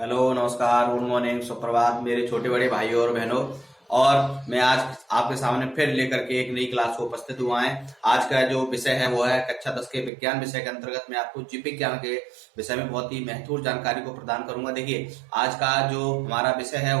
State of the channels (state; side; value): drops out; left; at 10.1 s